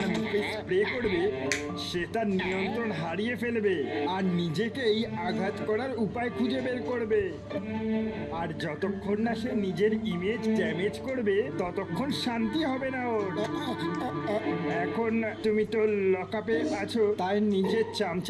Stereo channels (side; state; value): both; identical; correlation 1.00